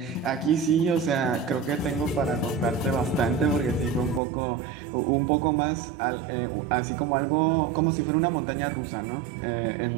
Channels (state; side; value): drops out; left; at 4.2 s